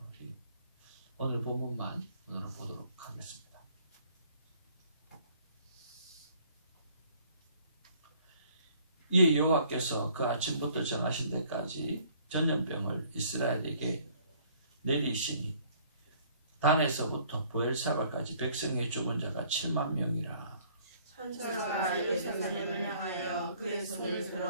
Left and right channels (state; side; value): inverted; both; correlation -0.59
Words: 오늘 본문만 오늘 보도록 하겠습니다. 이에 여호와께서 그 아침부터 정하신 데까지 전염병을 이스라엘에게 내리시니 단에서부터 부엘사바까지 백성의 죽은 자가 7만 명이라. 천사가 예루살렘을 향하여 그의 손을